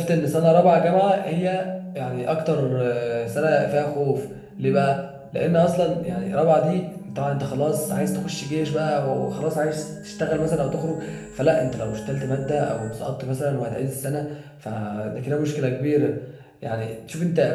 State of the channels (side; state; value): both; identical; correlation 1.00